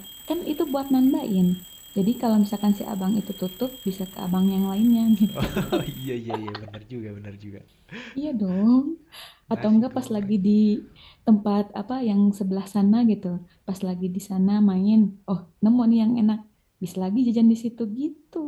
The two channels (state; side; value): identical; both; correlation 1.00